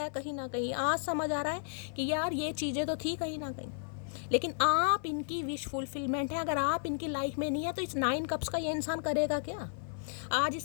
है कहीं ना कहीं, आज समझ आ रहा है कि यार ये चीज़ें तो थी कहीं ना कहीं, लेकिन आप इनकी विश फुलफिलमेंट है। अगर आप इनकी लाइफ में नहीं है तो इस 9 कप्स का ये इंसान करेगा क्या। आज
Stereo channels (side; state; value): right; silent; 56 dB below the other